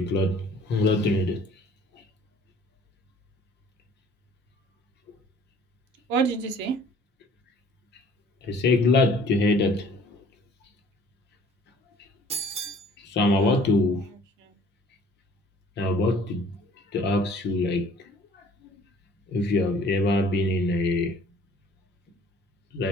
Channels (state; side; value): normal; both; correlation 0.53